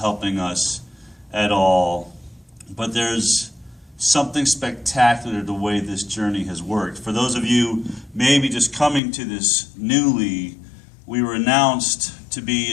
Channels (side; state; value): right; drops out; at 9.0 s